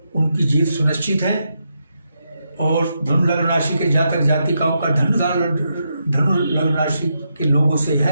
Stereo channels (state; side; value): inverted; both; correlation -0.83